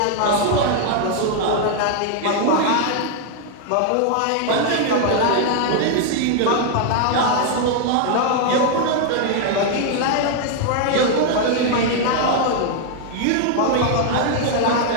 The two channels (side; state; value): both; different; correlation 0.00